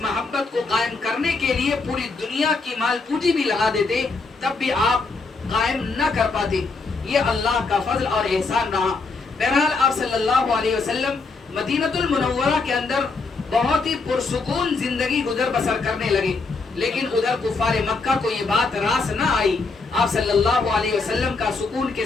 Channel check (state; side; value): quieter; right; 4.0 dB